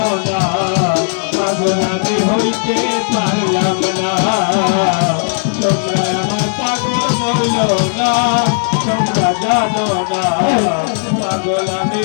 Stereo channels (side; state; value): right; silent; digital silence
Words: পাগল আমি হইতে পারলাম না। তোমরা আমার পাগল বলো না, তোমরা জানো না পাগল আমি